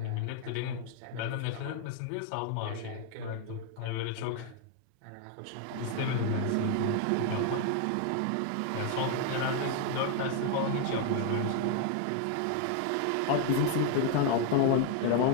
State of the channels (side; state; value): both; different; correlation 0.00